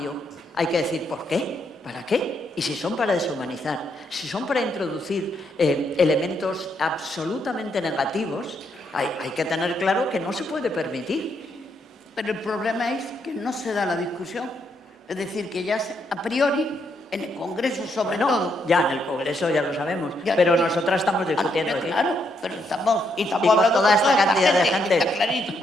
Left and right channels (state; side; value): normal; both; correlation 0.76